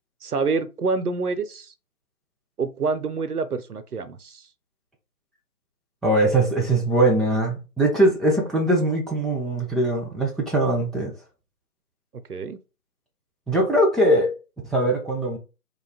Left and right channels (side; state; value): both; normal; correlation 0.24